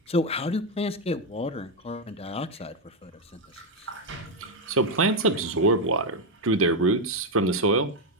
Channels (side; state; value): both; normal; correlation 0.04